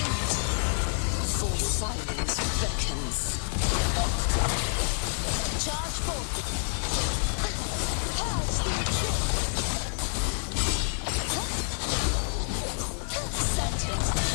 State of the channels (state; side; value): silent; right; digital silence